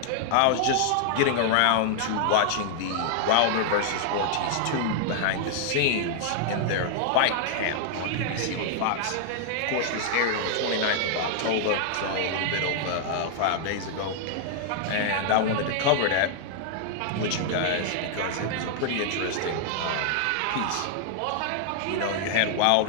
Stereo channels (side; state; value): both; different; correlation -0.01